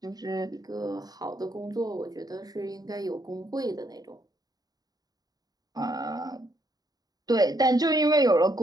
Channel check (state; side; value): late; left; 0.18 ms